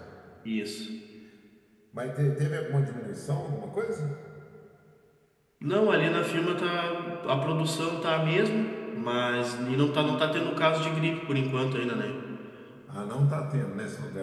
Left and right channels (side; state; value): both; identical; correlation 1.00